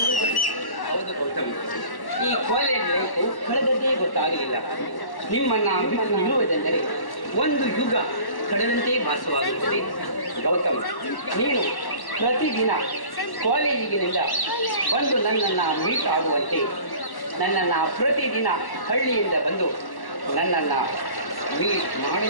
ಹೌದು ಗೌತಮ್, ಈ ಕಾಲೇಜ್ ಲೈಫು ಕಳೆದದ್ದೇ ಗೊತ್ತಾಗಲಿಲ್ಲ. ನಿಮ್ಮನ್ನ ಬಿಟ್ಟು ನಿಲ್ಲುವುದೆಂದರೆ ಒಂದು ಯುಗ ಕಳೆದಂತೆ ಭಾಸವಾಗುತ್ತದೆ. ಗೌತಮ್, ನೀನು ಪ್ರತಿದಿನ ಕಾಲೇಜಿಗಿನಿಂದ ಬಂದು ನನ್ನನ್ನು ಮೀಟ್ ಆಗುವಂತೆ, ನನ್ನನ್ನು ಪ್ರತಿದಿನ ಹಳ್ಳಿಯಿಂದ ಬಂದು ನನ್ನನ್ನು ಮೀಟ್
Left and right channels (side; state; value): right; late; 1.1 ms